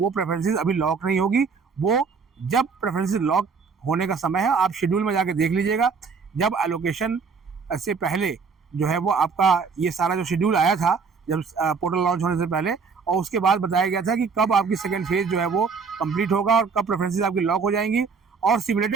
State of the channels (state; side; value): quieter; left; 5.3 dB